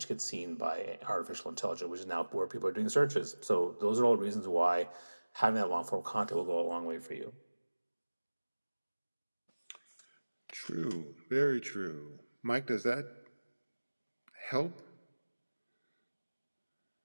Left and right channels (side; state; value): both; inverted; correlation -1.00